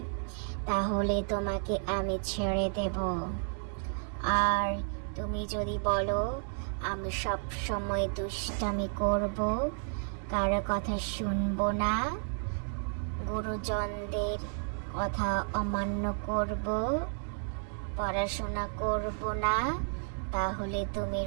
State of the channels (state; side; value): silent; left; 56 dB below the other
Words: তাহলে তোমাকে আমি ছেড়ে দেব। আর তুমি যদি বলো আমি সব সময় দুষ্টামি করব, কারো কথা শুনবো না, গুরুজনদের কথা অমান্য করব, পড়াশোনা করব না, তাহলে তুমি